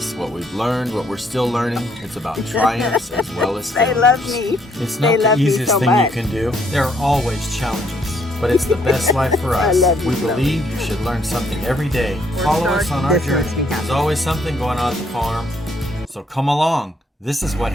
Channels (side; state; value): both; normal; correlation 0.68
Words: what we've learned, what we're still learning. It's about triumphs as well as failures. They love me. It's not the easiest thing you can do. There are always challenges, but it's the best life for us. We believe you should learn something every day. Follow us on our journey. There's always something going on at the farm, so come along. This is what